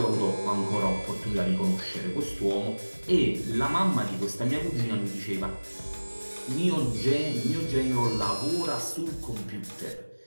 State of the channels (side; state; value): both; inverted; correlation -1.00